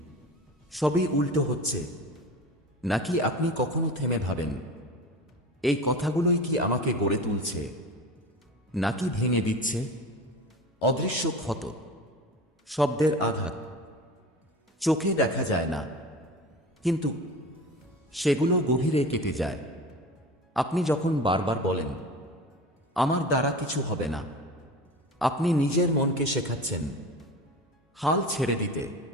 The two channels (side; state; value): both; normal; correlation 0.34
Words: সবই উল্টো হচ্ছে। নাকি আপনি কখনো থেমে ভাবেন, এই কথাগুলোই কি আমাকে গড়ে তুলছে, নাকি ভেঙে দিচ্ছে? অদৃশ্য ক্ষত, শব্দের আঘাত, চোখে দেখা যায় না, কিন্তু সেগুলো গভীরে কেটে যায়। আপনি যখন বারবার বলেন, আমার দ্বারা কিছু হবে না, আপনি নিজের মনকে শেখাচ্ছেন হাল ছেড়ে দিতে।